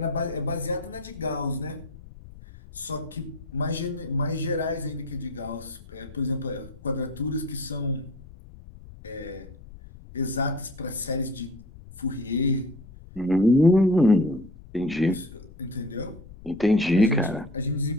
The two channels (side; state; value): left; noise; rumble, 18 dB below the sound